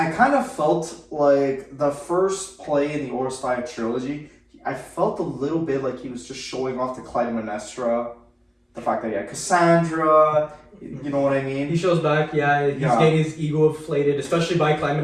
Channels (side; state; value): both; identical; correlation 1.00